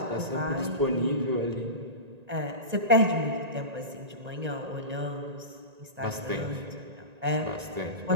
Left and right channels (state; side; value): late; left; 1.9 ms